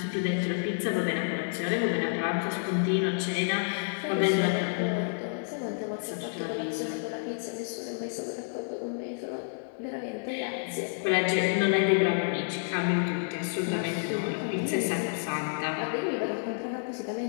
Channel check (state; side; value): silent; right; 58 dB below the other